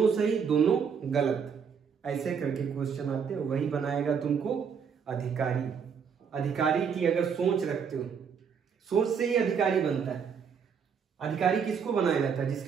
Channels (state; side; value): quieter; left; 6.7 dB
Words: दोनों गलत, ऐसे करके क्वेश्चन आते हैं। वही बनाएगा तुमको अधिकारी। अधिकारी की अगर सोच रखते हो, सोच से ही अधिकारी बनता है। अधिकारी किसको बनाया जाता है?